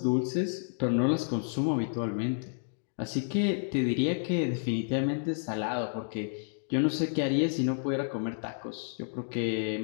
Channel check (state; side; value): silent; right; digital silence